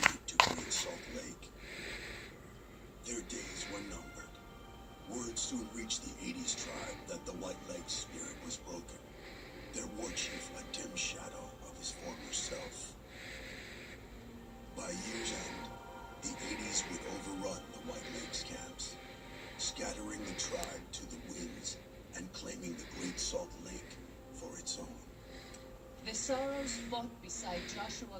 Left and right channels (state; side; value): identical; both; correlation 1.00